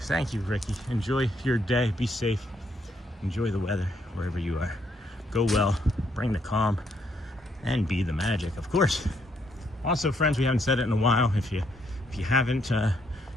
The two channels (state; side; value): normal; both; correlation 0.73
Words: you, Ricky. Enjoy your day. Be safe. Enjoy the weather wherever you are. Go well. Bring the calm, and be the magic, of course. Also, friends, we haven't said it in a while. If you haven't